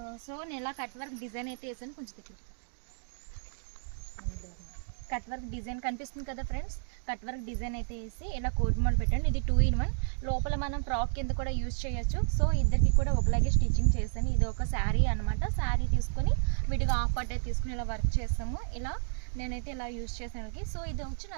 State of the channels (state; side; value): silent; left; digital silence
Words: So నేను ఇలా కట్ వర్క్ డిజైన్ అయితే వేసాను. కొంచెం దగ్గర కట్ వర్క్ డిజైన్ కనిపిస్తుంది కదా ఫ్రెండ్స్, కట్ వర్క్ డిజైన్ అయితే వేసి ఇలా కోట్ మోడల్ పెట్టాను. ఇది 2 in 1, లోపల మనం ఫ్రాక్ కింద కూడా యూజ్ చేయొచ్చు. సో ఇద్దరికి కూడా ఒకలాగే స్టిచ్చింగ్ చేస్తాను. ఇది ఒక శారీ అనమాట. శారీ తీసుకొని విడిగా హాఫ్ పార్ట్ అయితే తీసుకుని ఇలా వర్క్ చేస్తాము. ఇలా నేనైతే ఇలా యూజ్ చేసాను. సో ఇది